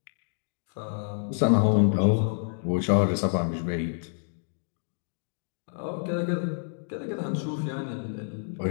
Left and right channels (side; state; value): right; silent; digital silence